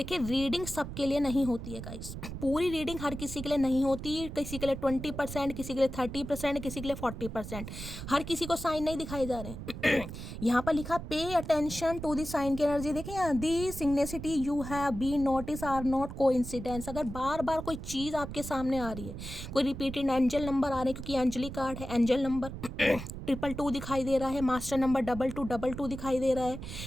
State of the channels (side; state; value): right; noise; rumble, 9 dB below the sound